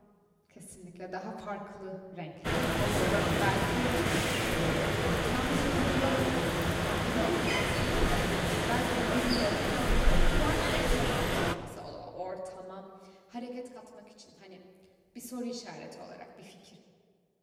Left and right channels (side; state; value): both; identical; correlation 1.00